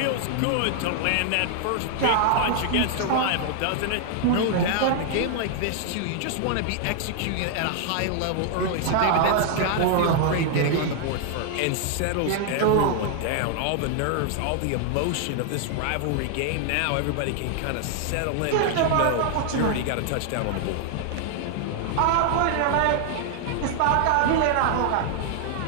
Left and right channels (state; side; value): different; both; correlation 0.00